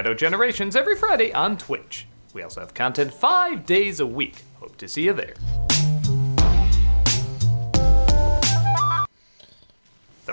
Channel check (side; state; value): both; inverted; correlation -1.00